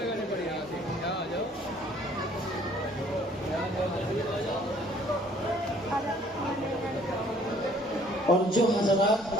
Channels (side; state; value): both; normal; correlation 0.58